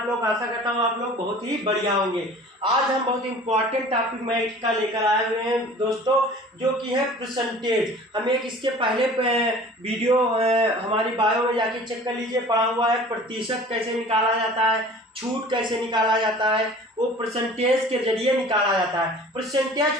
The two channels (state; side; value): normal; both; correlation 0.45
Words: लोग? आशा करता हूँ आप लोग बहुत ही बढ़िया होंगे। आज हम बहुत इंपॉर्टेंट टॉपिक मैथ का लेकर आए हुए हैं दोस्तों, जो कि है परसेंटेज। हम एक इसके पहले वीडियो हमारी बायो में जाके चेक कर लीजिए, पढ़ा हुआ है प्रतिशत कैसे निकाला जाता है, छूट कैसे निकाला जाता है, वो परसेंटेज के जरिए निकाला जाता है।